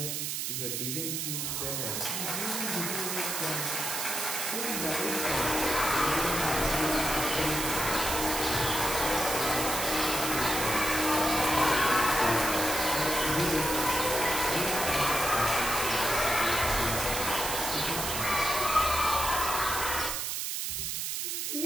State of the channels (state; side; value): noise; right; hiss, 2 dB below the sound